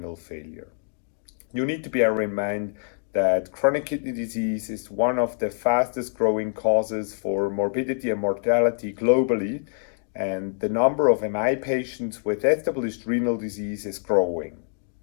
Failure. You need to bear in mind that chronic kidney disease is one of the fastest growing causes for morbidity and mortality globally, and the number of MI patients with established renal disease is growing.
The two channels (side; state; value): right; silent; digital silence